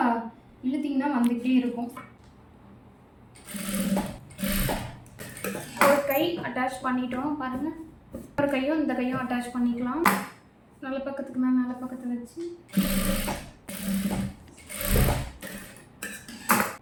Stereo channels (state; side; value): identical; both; correlation 1.00